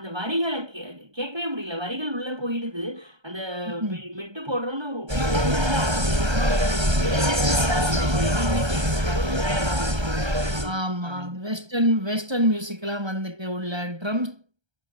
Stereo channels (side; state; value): left; late; 1.3 ms